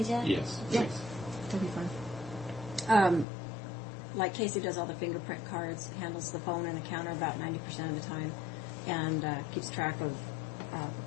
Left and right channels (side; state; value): right; drops out; at 3.2 s